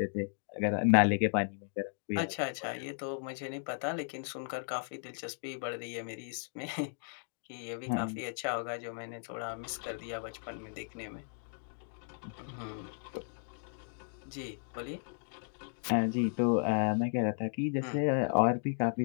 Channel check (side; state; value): right; silent; digital silence